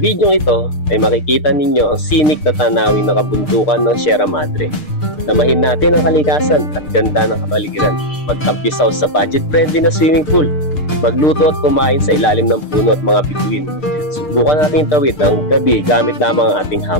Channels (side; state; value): right; late; 6.6 ms